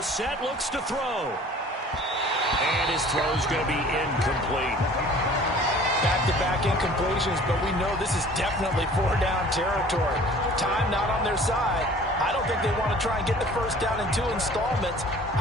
looks to throw. And his throw's going to be incomplete. Back-to-back incompletions, but we know this is definitely 4-down territory. Time not on their side. I don't think they want to try and get the 1st down in 2 installments.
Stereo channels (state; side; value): normal; both; correlation 0.48